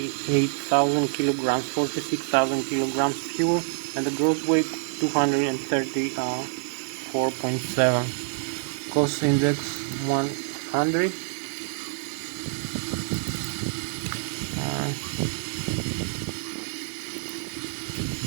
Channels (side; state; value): left; silent; 60 dB below the other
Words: kilograms, 46,000 kilograms fuel, and the gross weight 234.7. Cost index 100.